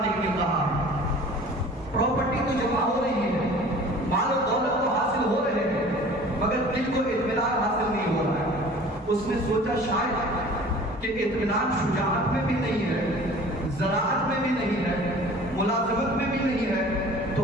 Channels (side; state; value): both; normal; correlation 0.45